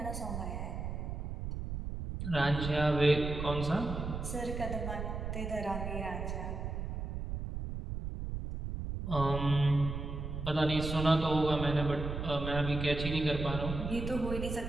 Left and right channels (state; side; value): noise; right; rumble, 5 dB below the sound